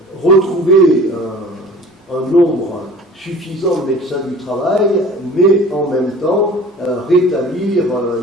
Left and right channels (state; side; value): normal; both; correlation 0.44